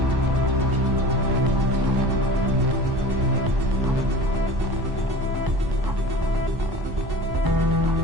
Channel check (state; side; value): late; left; 1.1 ms